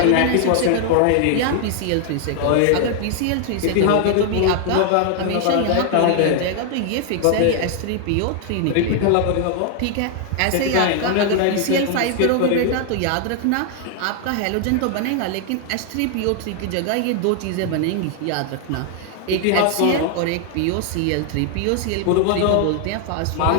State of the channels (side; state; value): both; different; correlation 0.00